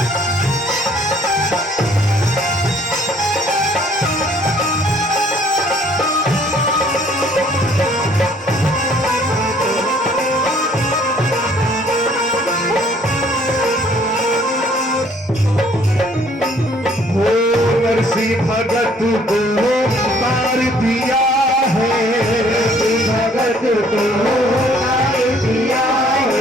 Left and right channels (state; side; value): normal; both; correlation 0.60